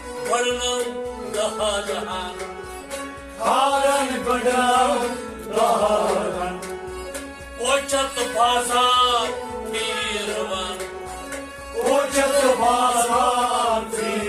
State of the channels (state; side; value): identical; both; correlation 1.00